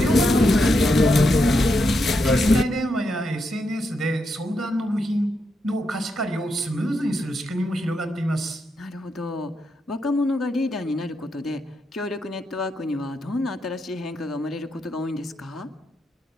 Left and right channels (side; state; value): both; normal; correlation 0.83